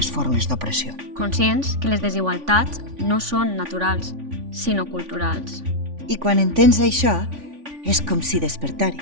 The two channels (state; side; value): late; left; 3.5 ms